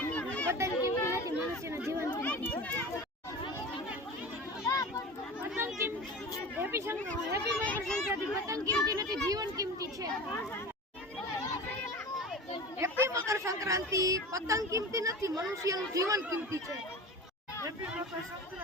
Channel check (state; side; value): normal; both; correlation 0.33